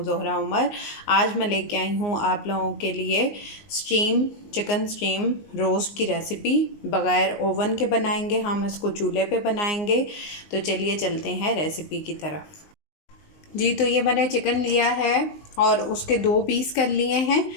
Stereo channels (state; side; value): late; right; 19 ms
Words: ज़ोहरा उमर। आज मैं लेके आई हूँ आप लोगों के लिए चिकन स्टीम रोस्ट की रेसिपी। बग़ैर ओवन के बनाएंगे हम इसको, चूल्हे पे बनाएंगे। तो चलिए चलते हैं रेसिपी की तरफ। जी, तो ये मैंने चिकन लिया है और उसके 2 पीस कर लिए हैं।